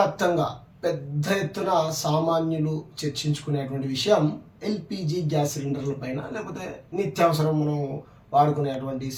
పెద్ద ఎత్తున సామాన్యులు చర్చించుకునేటువంటి విషయం ఎల్పిజి గ్యాస్ సిలిండర్ల పైన, లేకపోతే నిత్యావసరం మనం వాడుకునేటువంటి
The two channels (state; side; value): identical; both; correlation 1.00